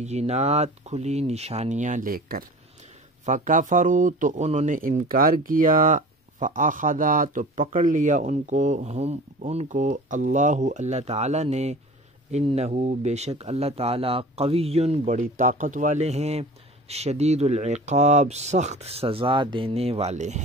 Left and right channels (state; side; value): normal; both; correlation 0.40